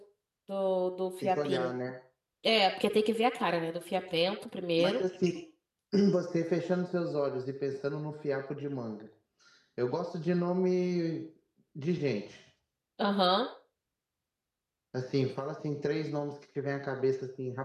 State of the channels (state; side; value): identical; both; correlation 1.00